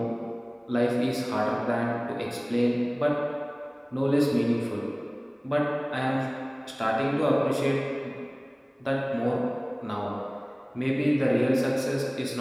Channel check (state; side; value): identical; both; correlation 1.00